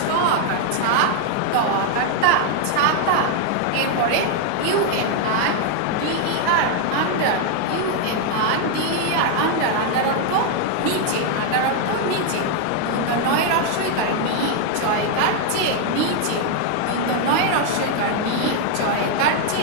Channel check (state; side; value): different; both; correlation 0.01